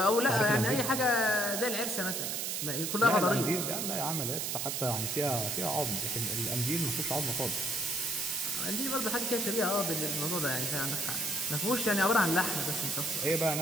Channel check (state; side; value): noise; right; hiss, 1 dB below the sound